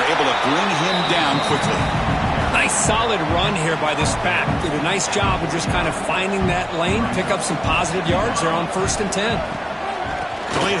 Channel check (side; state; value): both; identical; correlation 1.00